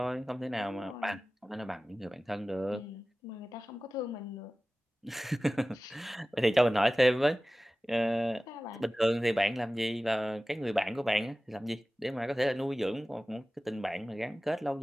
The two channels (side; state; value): both; normal; correlation 0.97